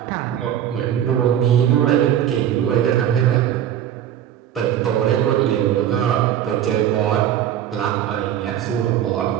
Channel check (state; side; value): quieter; left; 10.6 dB